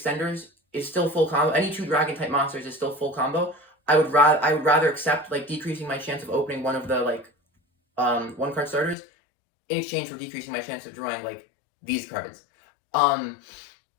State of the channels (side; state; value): right; drops out; at 9.0 s